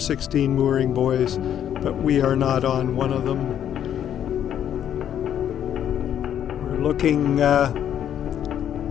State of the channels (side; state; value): right; quieter; 9.9 dB